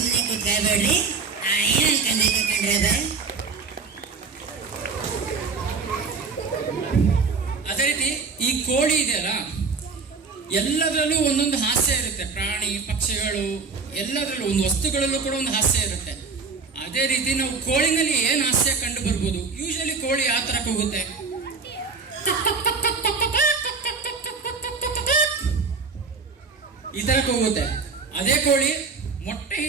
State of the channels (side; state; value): left; quieter; 4.7 dB